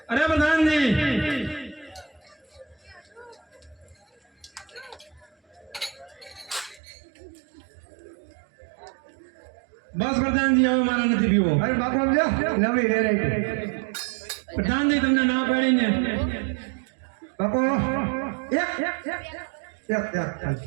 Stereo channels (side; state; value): left; drops out; at 6.8 s